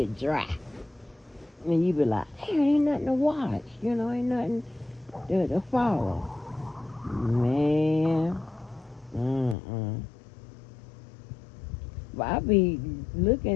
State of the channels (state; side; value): drops out; right; at 9.6 s